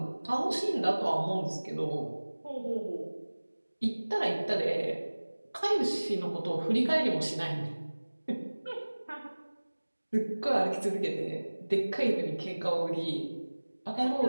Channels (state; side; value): inverted; both; correlation -1.00